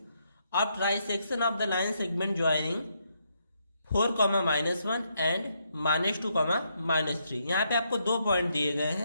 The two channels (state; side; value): inverted; both; correlation -0.77